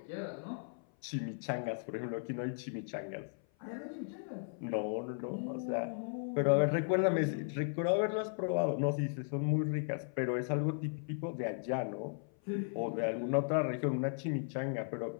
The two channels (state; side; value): silent; right; 54 dB below the other